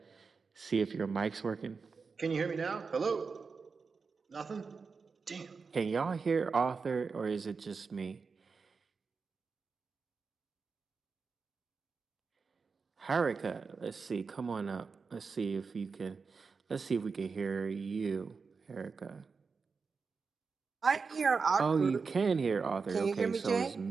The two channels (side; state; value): left; quieter; 4.9 dB